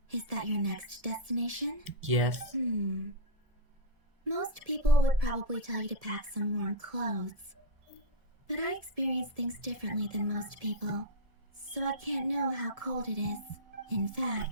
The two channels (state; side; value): late; left; 1.7 ms